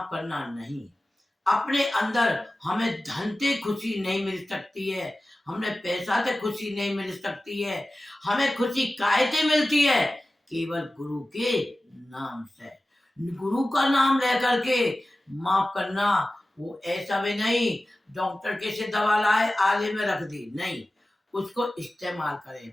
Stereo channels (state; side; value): normal; both; correlation 0.96